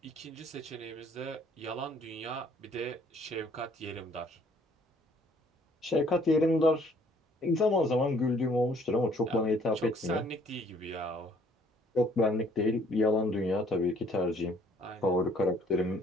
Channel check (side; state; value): both; normal; correlation 0.61